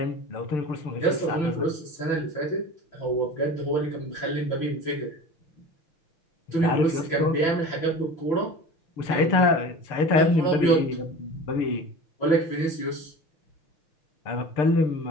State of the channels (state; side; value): late; right; 6.7 ms